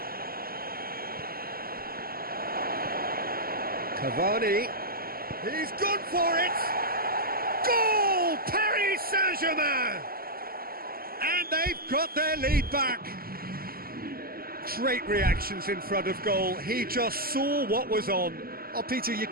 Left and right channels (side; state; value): left; late; 0.43 ms